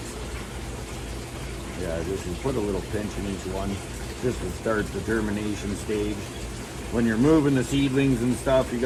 Yeah, just put a little pinch in each one just to start the germination stage. When you're moving the seedlings and stuff, you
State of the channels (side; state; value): both; identical; correlation 1.00